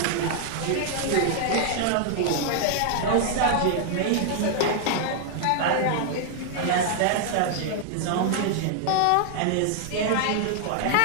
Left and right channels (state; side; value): different; both; correlation 0.00